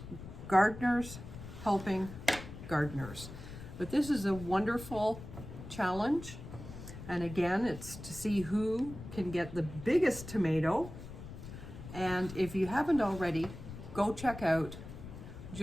gardeners helping gardeners. But this is a wonderful challenge, and again, it's to see who can get the biggest tomato. And if you haven't already, go check out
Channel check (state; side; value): noise; left; rumble, 12 dB below the sound